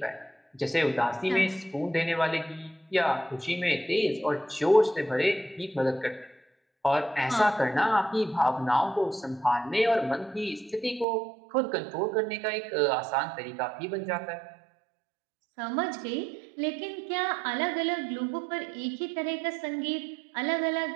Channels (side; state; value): left; drops out; at 11.1 s